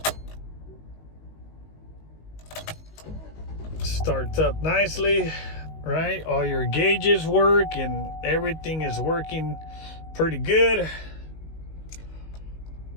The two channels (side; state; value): right; late; 19 ms